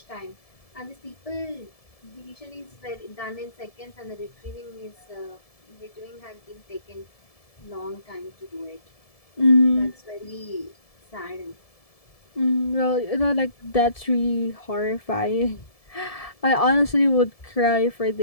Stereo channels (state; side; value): late; right; 1.7 ms